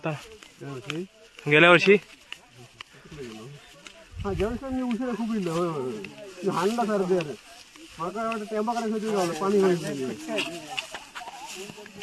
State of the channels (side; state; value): both; identical; correlation 1.00